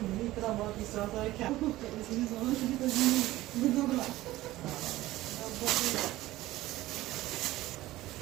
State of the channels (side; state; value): left; quieter; 16.7 dB